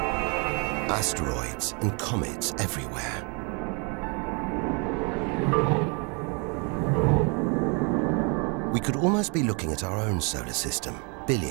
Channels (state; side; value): quieter; left; 34.6 dB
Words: Asteroids and comets everywhere. We could almost be looking at our own solar system